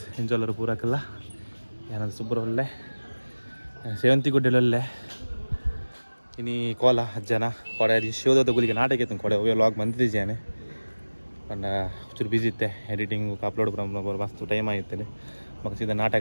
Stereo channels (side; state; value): both; inverted; correlation -1.00